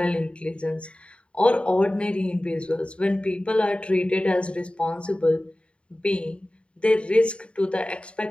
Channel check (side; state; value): right; late; 0.058 ms